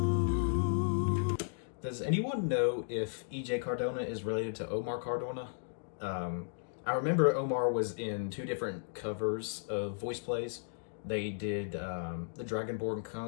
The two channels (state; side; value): silent; right; digital silence